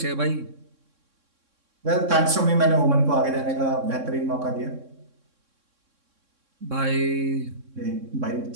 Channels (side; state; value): left; late; 3.6 ms